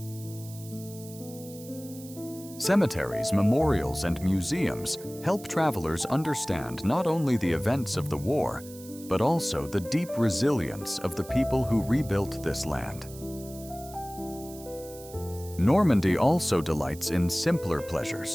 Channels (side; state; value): right; noise; hiss, 18 dB below the sound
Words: Cemeteries, memorials, and museums help travelers understand not only the events of the war, but also the deep resilience of the people who rebuilt this land. Normandy also delights in simpler